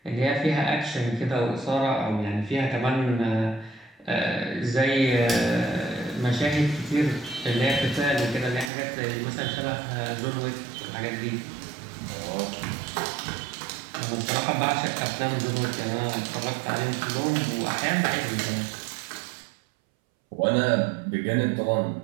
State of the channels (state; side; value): drops out; left; at 8.7 s